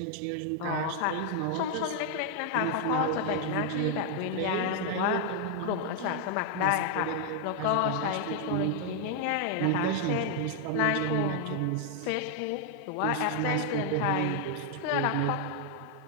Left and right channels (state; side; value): different; both; correlation 0.00